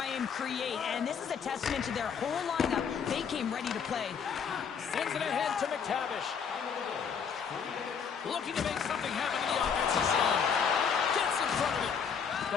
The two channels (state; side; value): quieter; right; 6.8 dB